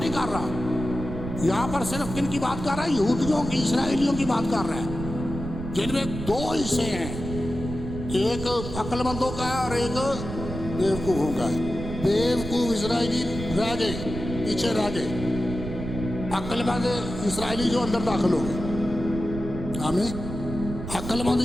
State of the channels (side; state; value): right; noise; rumble, 8 dB below the sound